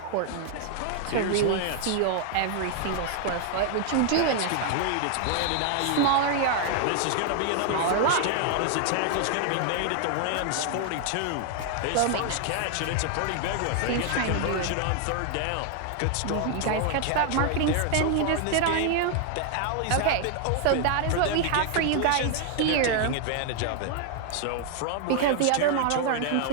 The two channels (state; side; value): different; both; correlation 0.00